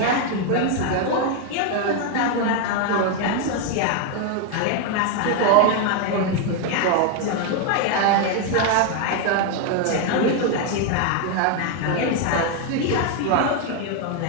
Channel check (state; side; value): different; both; correlation 0.01